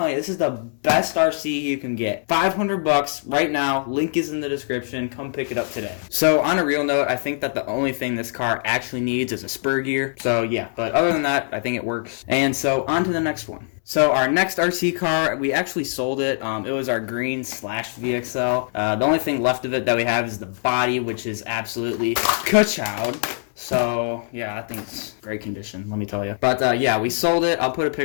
you, this is the best RC you can get. $500 right now. Link is in the description. Come pick it up today. So on a real note, I think that the only thing this car actually needs is a spur gear. So yeah, but other than that, I think it works. And so on to the next one. So our next RC car, we actually sold it. It was our green slash VXL. The only thing left of it that we have is the body, which is absolutely ka-chowed. So, yeah, I think it's great condition, let me tell you. But, yeah, we sold it. I'll put a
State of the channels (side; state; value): right; silent; 63 dB below the other